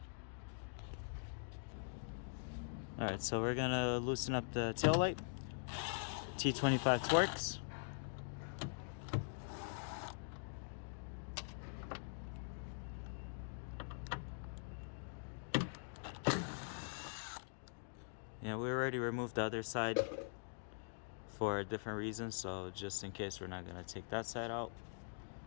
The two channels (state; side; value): silent; right; digital silence